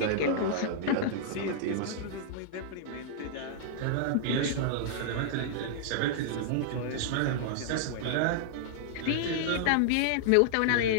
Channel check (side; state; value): both; different; correlation -0.01